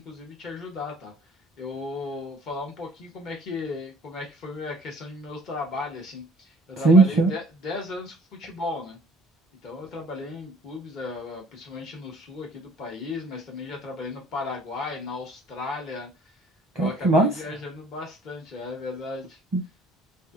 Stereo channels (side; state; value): both; normal; correlation 0.54